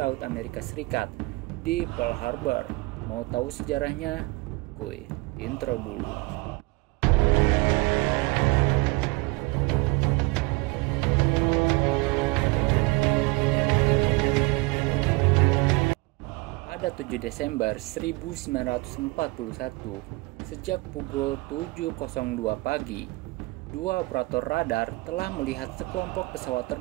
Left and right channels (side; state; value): left; quieter; 24.6 dB